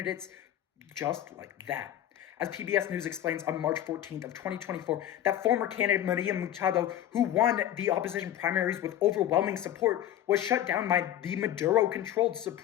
just like that. As PBS News explains on March 14th of 2024, that former candidate Maria Machado, who won the opposition primaries with overwhelming support, was shut down by the Maduro-controlled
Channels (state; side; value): quieter; right; 11.8 dB